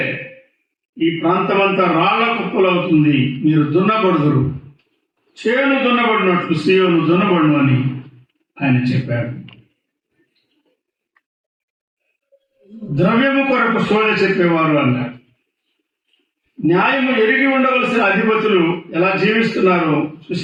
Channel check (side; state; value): both; identical; correlation 1.00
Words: ఈ ప్రాంతమంతా రాళ్ల కుప్పలవుతుంది, మీరు దున్నబడుదురు, చేను దున్నబడినట్లు సీయోను దున్నబడును అని ఆయన చెప్పాడు. ద్రవ్యము కొరకు శోధ చెప్పేవారు అన్నాడు. న్యాయము ఎరిగి ఉండవలసిన అధిపతులు ఎలా జీవిస్తున్నారో